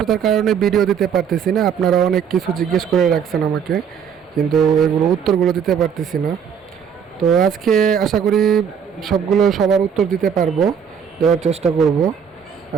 কারণে ভিডিও দিতে পারতেছি না। আপনারা অনেক কিছু জিজ্ঞেস করে রাখছেন আমাকে, কিন্তু এগুলো উত্তরগুলো দিতে পারতেছি না। তো আজকে আশা করি সবার উত্তর দিতে পারবো, দেওয়ার চেষ্টা করব।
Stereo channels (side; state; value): left; quieter; 7.5 dB